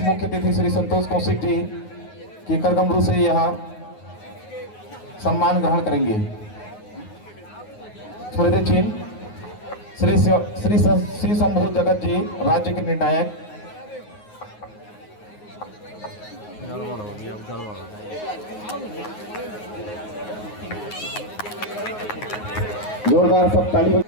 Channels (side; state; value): right; late; 9.5 ms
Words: मुख्य अतिथि श्री संतोष कौशिक जी की करगमरू से यहाँ सम्मान ग्रहण करेंगे। स्मृति चिन्ह श्री शंभू जगत जी राज्य के निर्णायक। जोरदार सब ताली